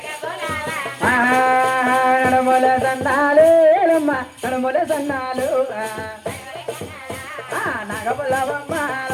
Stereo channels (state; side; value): identical; both; correlation 1.00